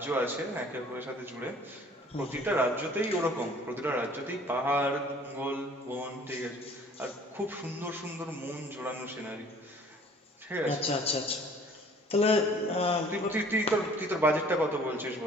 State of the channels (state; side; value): normal; both; correlation 0.52